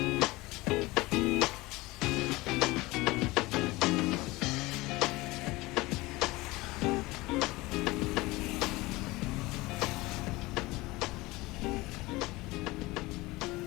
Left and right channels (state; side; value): quieter; right; 21.1 dB